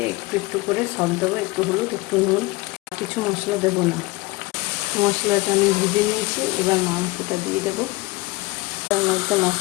একটু একটু করে সব দেবো। একটু হলুদ, একটু নুন, কিছু মশলা দেবো না। মশলাটা আমি ভেজে নিয়েছি। এবার মাংসটা দিয়ে দেবো। তার মধ্যে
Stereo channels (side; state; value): right; quieter; 22.6 dB